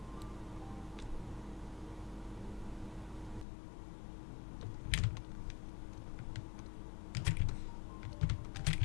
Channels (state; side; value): drops out; right; at 3.5 s